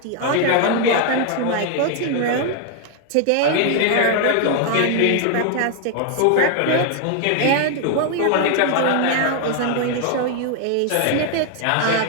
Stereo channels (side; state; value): both; different; correlation 0.00